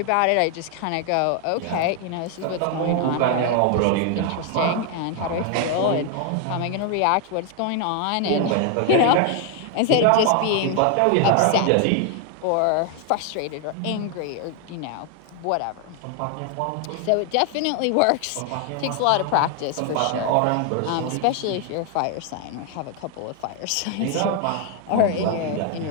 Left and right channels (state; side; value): different; both; correlation 0.00